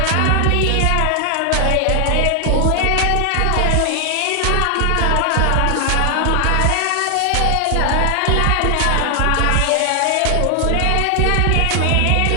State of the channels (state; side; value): different; both; correlation 0.00